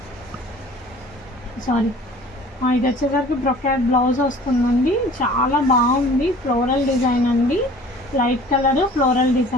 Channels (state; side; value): normal; both; correlation 0.48